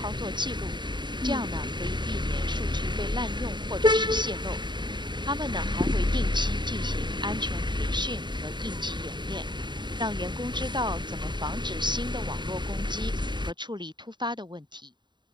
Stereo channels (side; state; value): left; late; 0.22 ms